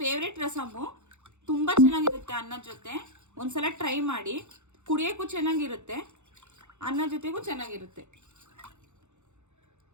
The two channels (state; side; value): late; left; 0.83 ms